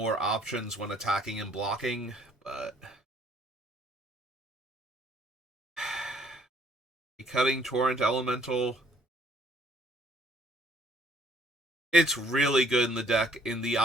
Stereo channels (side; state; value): both; normal; correlation 0.63